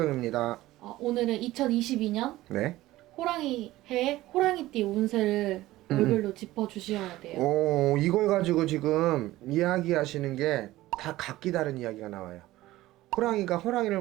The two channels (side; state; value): left; quieter; 16.7 dB